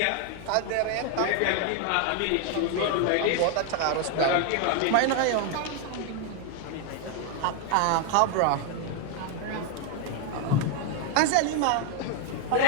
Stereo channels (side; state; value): both; different; correlation 0.01